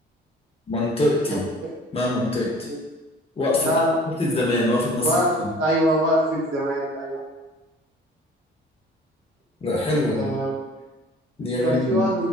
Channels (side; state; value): both; normal; correlation 0.49